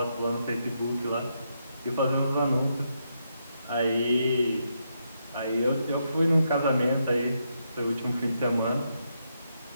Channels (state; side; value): inverted; both; correlation -0.80